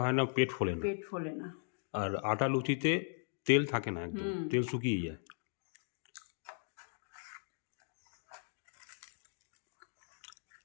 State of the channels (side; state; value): right; silent; 52 dB below the other